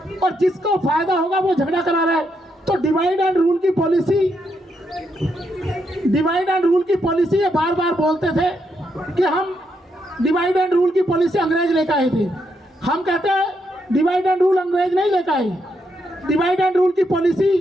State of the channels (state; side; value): normal; both; correlation 0.79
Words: और जिसको फायदा होगा वो झगड़ा करा रहा है। तो डिवाइड एंड रूल की पॉलिसी ये बार बार बोलते थे कि हम डिवाइड एंड रूल की पॉलिसी अंग्रेज लेकर आए थे। हम कहते हैं डिवाइड एंड रूल अंग्रेज नहीं लेकर आए। डिवाइड एंड रूल की